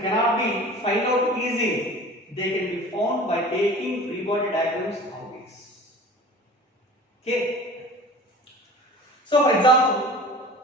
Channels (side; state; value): both; normal; correlation 0.41